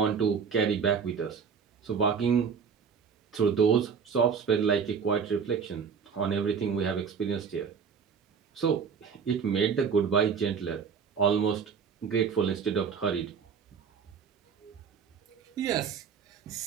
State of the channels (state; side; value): quieter; left; 6.4 dB